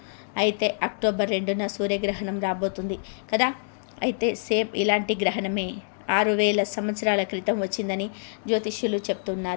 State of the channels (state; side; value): silent; right; 61 dB below the other